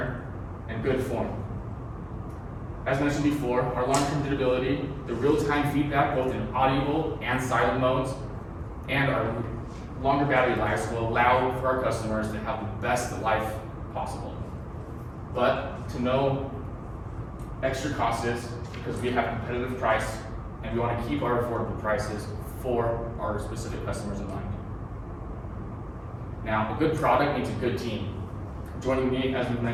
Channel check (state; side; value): identical; both; correlation 1.00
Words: and good form. As mentioned before, our long-term durability, the real-time feedback both in audible and silent modes, and our longer battery lives will allow for our customers to have the best life possible. But to no extra costs because we have competitive price and we want to keep our affordable prices for our specific customers in mind. Now, a good product needs a good team. Joining me, as we've